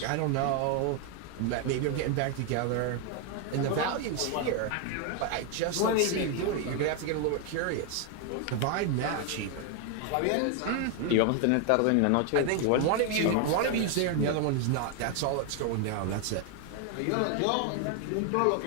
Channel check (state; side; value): different; both; correlation 0.01